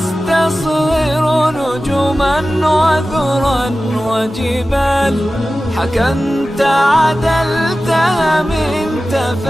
نجما وذرا وجبال. حكمت عدلت هممت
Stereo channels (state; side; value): normal; both; correlation 0.95